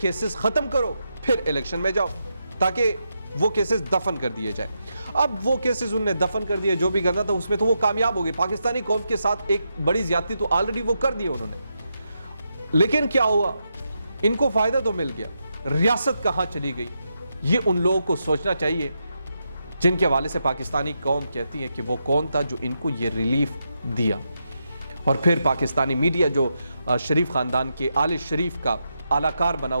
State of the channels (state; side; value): inverted; both; correlation -0.84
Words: ختم کرو پھر الیکشن میں جاؤ تاکہ وہ کیسز دفن کر دیے جائیں. اب وہ کیسز انہوں نے دفن کر دیے، جو بھی کرنا تھا اس میں تو وہ کامیاب ہو گئے. پاکستانی قوم کے ساتھ ایک بڑی زیادتی تو آلریڈی وہ کر دی انہوں نے. لیکن کیا ہوا؟ ان کو فائدہ تو مل گیا، ریاست کہاں چلی گئی؟ یہ ان لوگوں کو سوچنا چاہیے جن کے حوالے سے پاکستانی قوم کہتی ہے کہ وہ کون تھا جو ان کو یہ ریلیف دیا. اور پھر پاکستانی میڈیا جو شریف خاندان کے آل شریف کا اعلی کار بنا